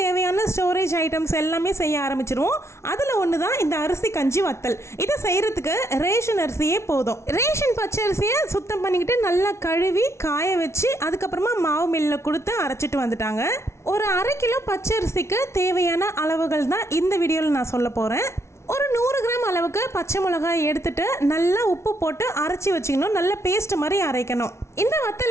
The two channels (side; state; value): right; late; 0.13 ms